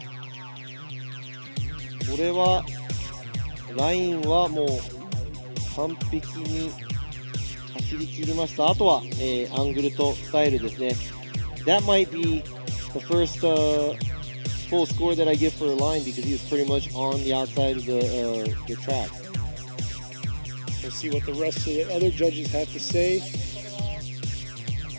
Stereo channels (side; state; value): both; inverted; correlation -1.00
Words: これはラインはもう完璧に走り切りました。あとは、アングルとスタイルですね。That might be the first full score that I give for a line because he was pretty much on the outside of the track. We'll see what the rest of the other judges have to say.